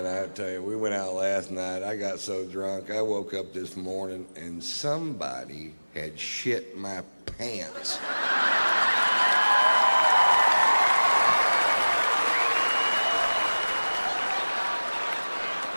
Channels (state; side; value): inverted; both; correlation -1.00